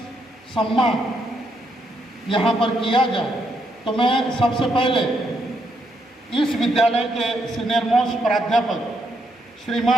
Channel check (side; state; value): both; normal; correlation 0.77